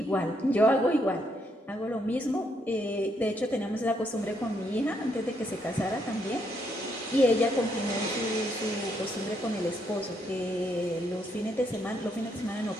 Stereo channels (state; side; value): normal; both; correlation 0.75